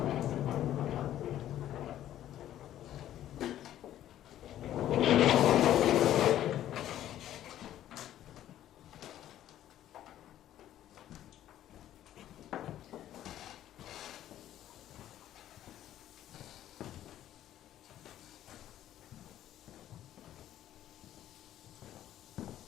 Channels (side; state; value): right; quieter; 12.3 dB